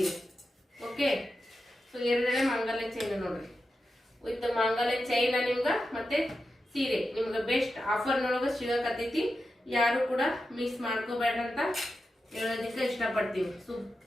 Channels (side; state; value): both; normal; correlation 0.90